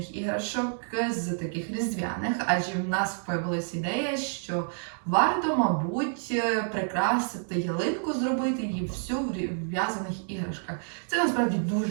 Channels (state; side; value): silent; left; digital silence